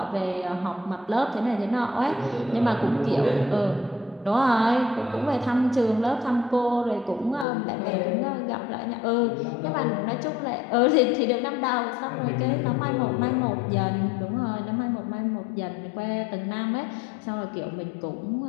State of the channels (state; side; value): drops out; right; at 7.5 s